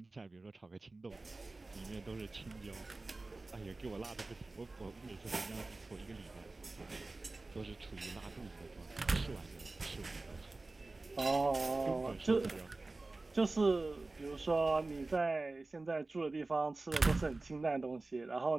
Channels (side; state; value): left; quieter; 3.3 dB